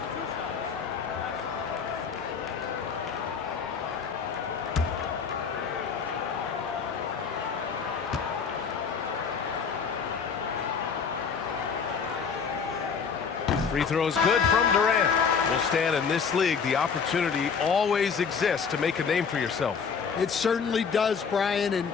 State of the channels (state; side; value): quieter; right; 6.1 dB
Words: Free throws good from Durant. Will stand in this league. The opportunity always exists to make a name for yourself. It certainly does, Brian. And